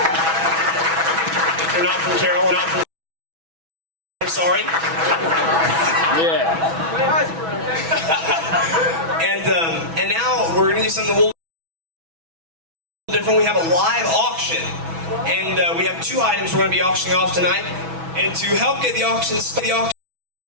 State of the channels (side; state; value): left; late; 6.1 ms